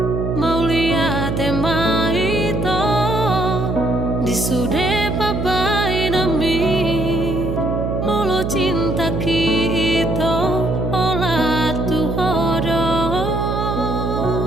mau lihat tema itu disude pabai nami molo cinta kita olah tuhodo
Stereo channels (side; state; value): right; noise; hum, 2 dB below the sound